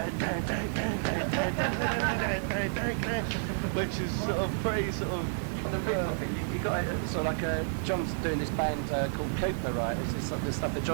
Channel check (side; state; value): left; silent; 57 dB below the other